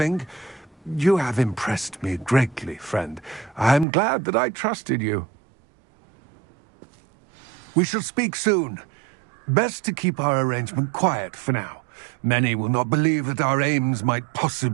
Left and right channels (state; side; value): drops out; left; at 3.9 s